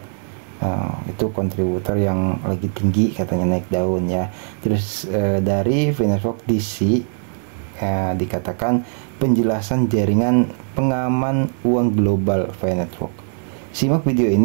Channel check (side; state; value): left; silent; digital silence